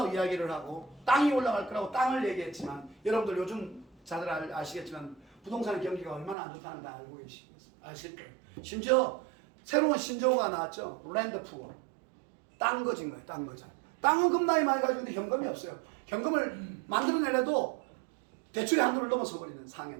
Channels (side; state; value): left; drops out; at 6.4 s